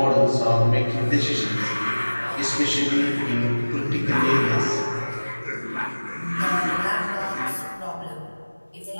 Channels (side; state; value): both; inverted; correlation -1.00